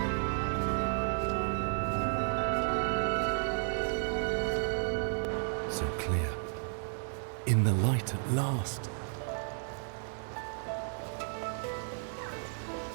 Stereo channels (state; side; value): silent; left; 56 dB below the other